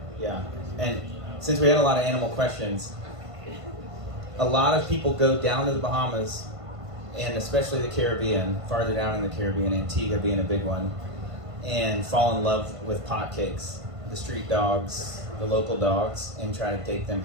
Yeah, and since we had a lot of animal questions, a lot of people go down to the Bahamas, and especially the Caribbean, farther down in the Caribbean, Antigua being a big one, and fall in love with potcakes, the street dogs, the local dogs, and try to take them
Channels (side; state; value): left; late; 1.5 ms